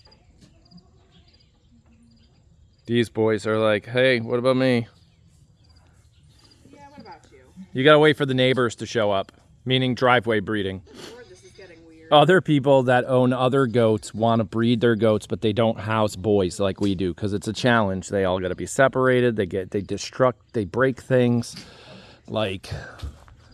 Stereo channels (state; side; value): identical; both; correlation 1.00